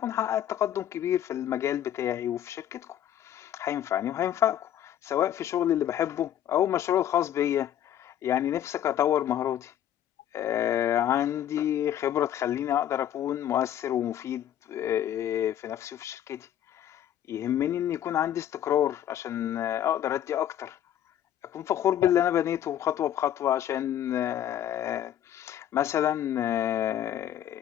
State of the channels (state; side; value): quieter; right; 10.9 dB